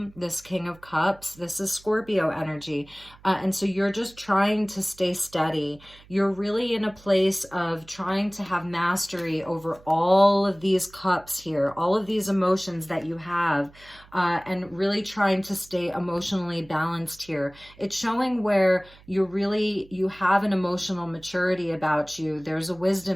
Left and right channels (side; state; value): right; noise; hum, 25 dB below the sound